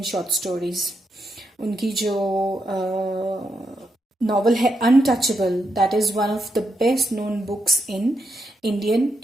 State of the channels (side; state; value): both; normal; correlation 0.82